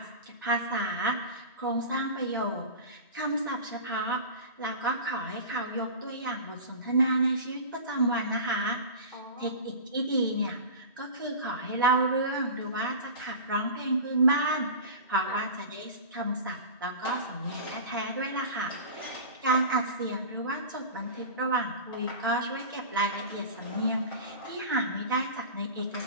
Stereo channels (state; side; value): inverted; both; correlation -0.32